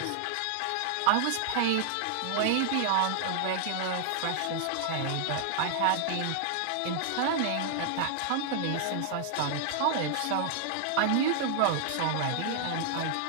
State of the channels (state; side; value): different; both; correlation -0.01